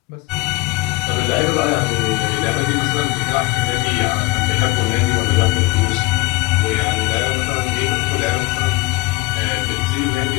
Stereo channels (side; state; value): right; quieter; 22.8 dB